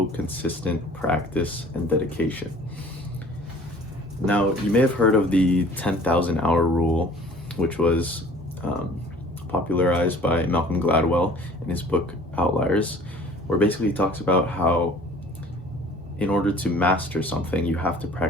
consistent practice and dedication. Now, you may have heard of the 10,000 hour rule, which was popularized by Malcolm Gladwell in his book Outliers, where basically he talks about how in order to master something, you have to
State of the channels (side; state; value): both; normal; correlation 0.50